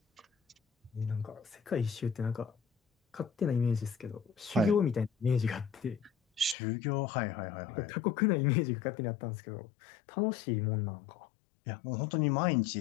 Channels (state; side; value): drops out; right; at 6.6 s